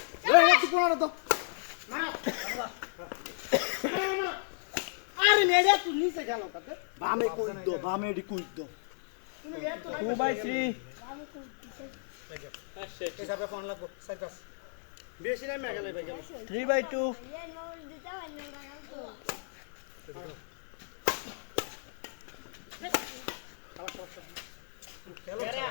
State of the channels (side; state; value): right; silent; 56 dB below the other